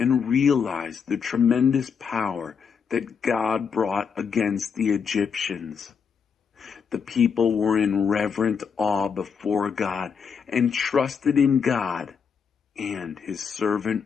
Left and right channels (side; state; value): right; quieter; 6.4 dB